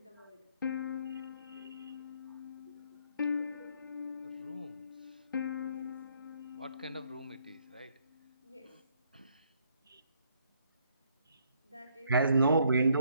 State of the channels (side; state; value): both; inverted; correlation -0.69